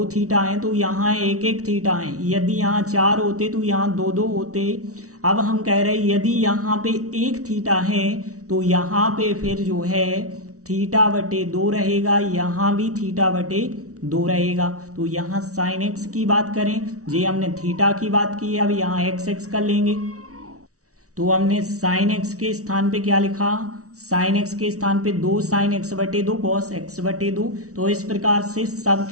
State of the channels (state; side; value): late; left; 0.65 ms